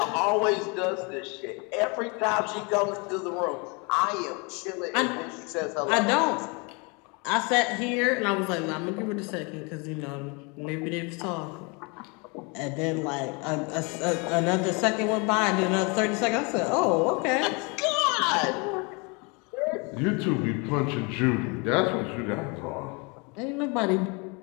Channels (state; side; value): quieter; right; 30.9 dB